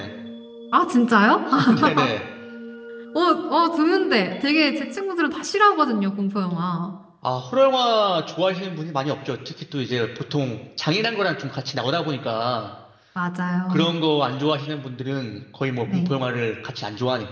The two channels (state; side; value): identical; both; correlation 1.00